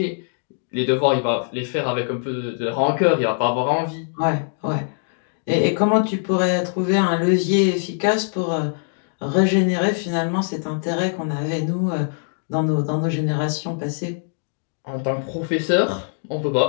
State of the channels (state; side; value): silent; right; digital silence